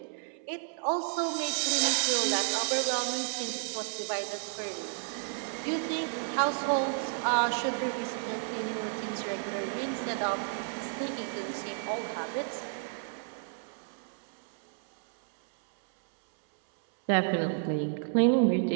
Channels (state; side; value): silent; left; 57 dB below the other